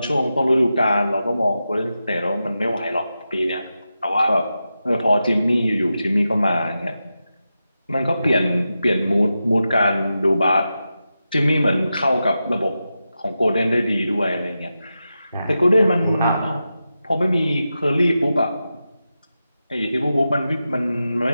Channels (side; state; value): both; inverted; correlation -0.90